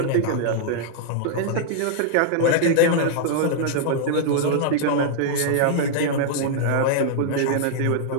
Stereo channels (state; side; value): different; both; correlation -0.01